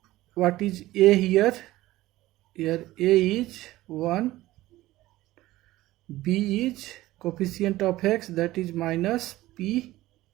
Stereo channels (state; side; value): quieter; left; 16.8 dB